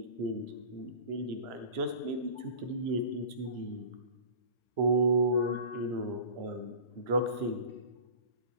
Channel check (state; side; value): late; right; 1.3 ms